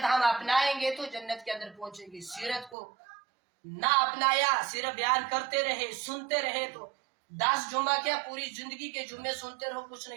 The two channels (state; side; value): drops out; left; at 2.8 s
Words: ہم اپنائیں گے تو جنت کے اندر پہنچیں گے، سیرت کو نہ اپنایا، صرف بیان کرتے رہے، سنتے رہے تو 10 جمعہ کیا پوری زندگی کے جمعے سنتے رہو، کچھ